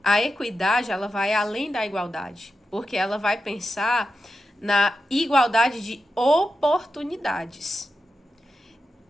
A equidade, ela vai além da igualdade, porque ela vai pensar na igualdade de oportunidades.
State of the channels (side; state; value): both; normal; correlation 0.90